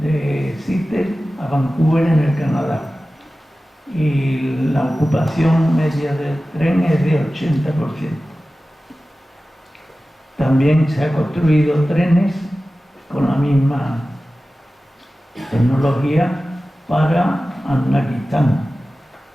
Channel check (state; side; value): normal; both; correlation 0.96